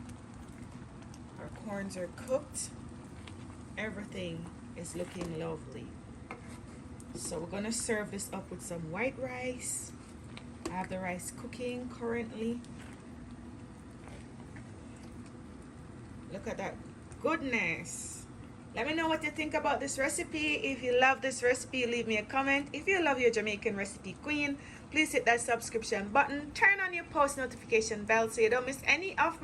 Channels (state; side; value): identical; both; correlation 1.00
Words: Our corns are cooked. Everything is looking lovely. So we're gonna serve this up with some white rice. I have the rice cooking currently. Look at that goodness. Let me know what you think about this recipe. If you love this recipe, leave me a comment. If you love your Jamaican recipe queen, please hit that subscription button. Turn on your post notification bell so you don't miss any of